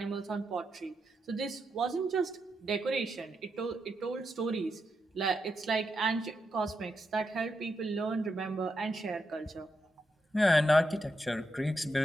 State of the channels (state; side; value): normal; both; correlation 0.84